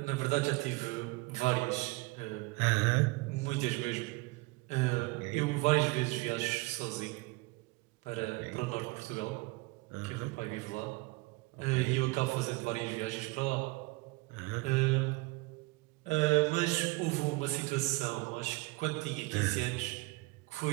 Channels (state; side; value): quieter; left; 23.5 dB